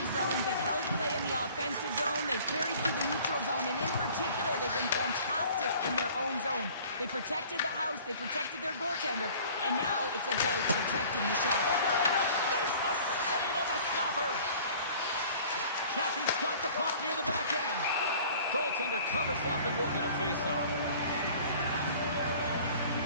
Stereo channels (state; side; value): inverted; both; correlation -0.49